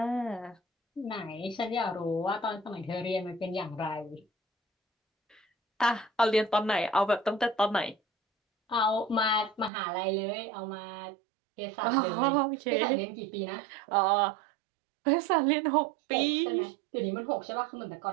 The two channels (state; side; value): drops out; left; at 9.7 s